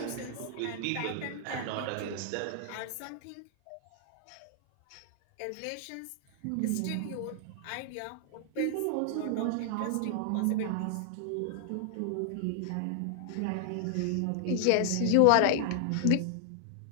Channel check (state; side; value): different; both; correlation 0.00